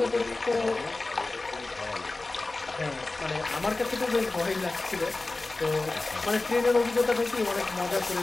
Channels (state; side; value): quieter; right; 3.2 dB